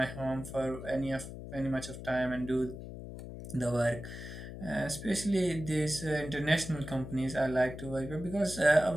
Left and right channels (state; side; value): noise; left; hum, 10 dB below the sound